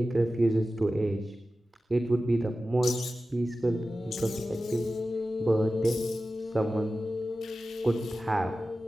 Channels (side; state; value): both; normal; correlation 0.94